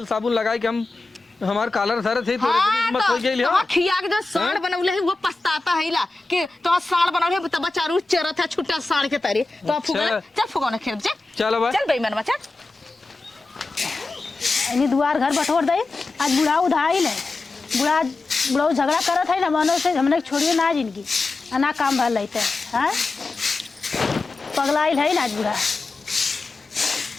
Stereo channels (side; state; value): right; quieter; 3.4 dB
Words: साबुन लगाई कि हम हमार कालर सर थे तो मत हो गई हाँ खिया के जो साड़ बनौले है वो पछताता है ला कि तो साड़ बनौले है तब चारू चरत है छुट्टा साड़ के तारी तो फुका चल फुकाऊ ना खेत चल चल भाई चल बेईमान बच्चा इनी दुआर घर बटोर दे आज बुढ़ा उधाई ले बुढ़ा झगड़ा करत है ना मनो से हमने छोड़िए ना जिनकी ना काम भर लेते हैं पगलाइल है ना आज बुढ़ा